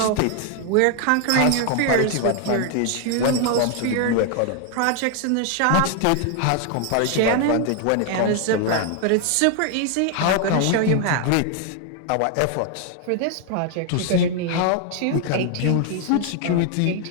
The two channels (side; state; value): both; different; correlation 0.00